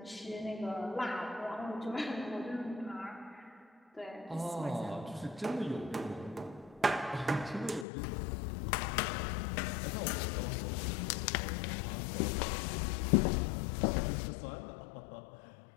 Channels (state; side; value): drops out; right; at 7.9 s